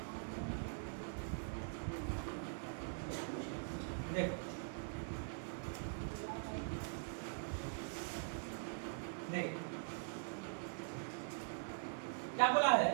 देखो देख क्या बोला है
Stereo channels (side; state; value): left; silent; digital silence